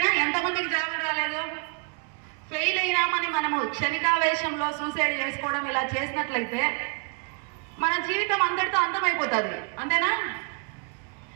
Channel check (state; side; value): quieter; left; 37.1 dB